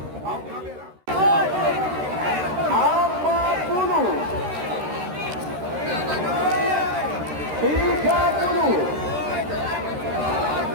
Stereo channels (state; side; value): late; left; 13 ms